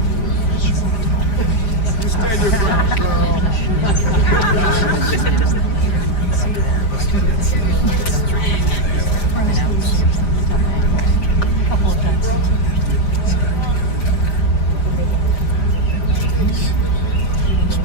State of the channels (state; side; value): late; right; 5.0 ms